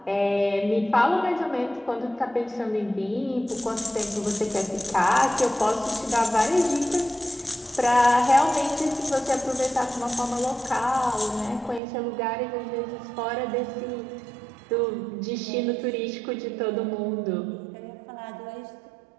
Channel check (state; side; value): drops out; left; at 11.8 s